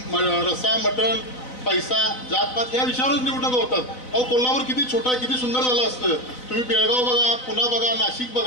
रस्सा, मटण, पैसा, जातपात या विषयावरच निवडणुका होतात. अहो, कोल्हापूर किती छोटा, किती सुंदर झालं असतं. तुम्ही बेळगाव बघा, पुणे बघा, नाशिक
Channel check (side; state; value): right; late; 4.0 ms